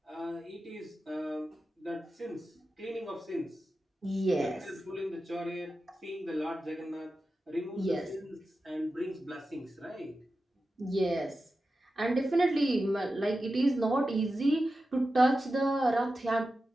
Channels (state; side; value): normal; both; correlation 0.92